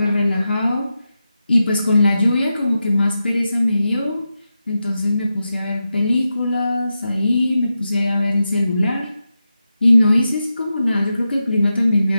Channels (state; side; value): inverted; both; correlation -0.90